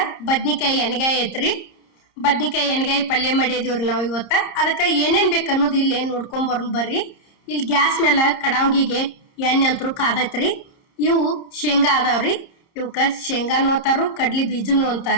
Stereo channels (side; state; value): right; late; 30 ms